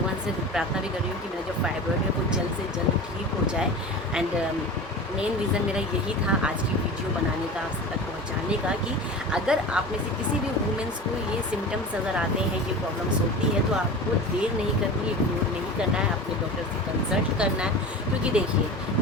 से प्रार्थना भी कर रही हूँ कि मेरा जो फाइब्रॉइड है वो जल्द से जल्द ठीक हो जाए। एंड मेन रीज़न मेरा यही था आज की वीडियो बनाने का, आप तक पहुंचाने का, कि अगर आप में से किसी भी वुमेंस को ये सिम्टम्स नज़र आते हैं, ये प्रॉब्लम्स होती है, तो आपको देर नहीं करनी है, इग्नोर नहीं करना है, अपने डॉक्टर से कंसल्ट करना है। क्योंकि देखिए,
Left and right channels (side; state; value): both; normal; correlation 0.33